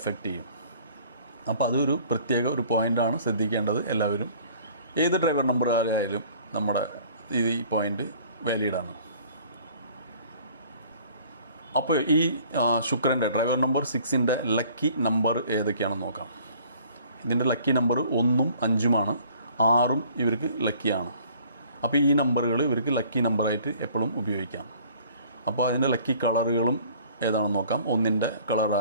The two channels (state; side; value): inverted; both; correlation -0.54